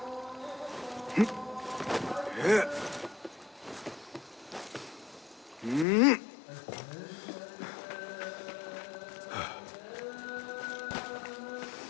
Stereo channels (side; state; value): right; drops out; at 5.9 s